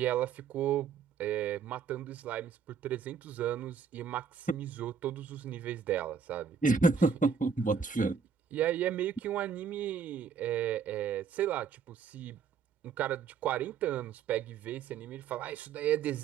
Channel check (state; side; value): quieter; left; 6.5 dB